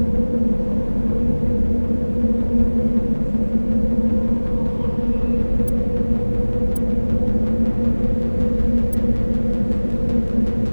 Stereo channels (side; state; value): both; inverted; correlation -1.00